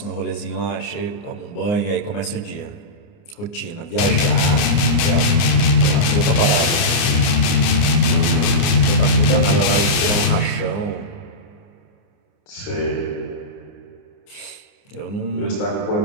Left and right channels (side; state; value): right; late; 30 ms